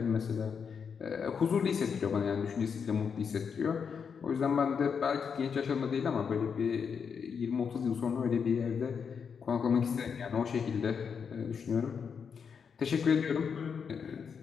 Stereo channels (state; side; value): quieter; right; 6.5 dB